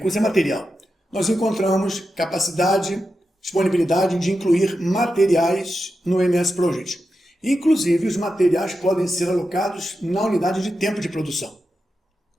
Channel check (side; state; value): both; normal; correlation 0.89